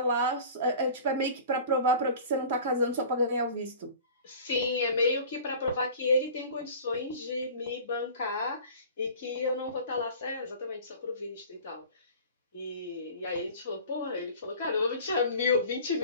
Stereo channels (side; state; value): both; inverted; correlation -0.42